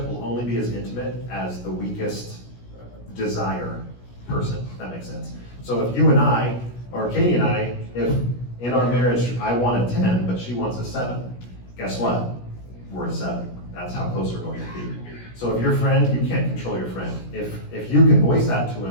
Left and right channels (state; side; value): late; right; 17 ms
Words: will only be as intimate as the weakest desire person, if that makes sense. So if you and I, or Katie and I, if in our marriage I want a 10, but she wants a 7, guess what? We're a 7. That's how close we're going to be. So if your friend, you can't control your friend. If you can voice that to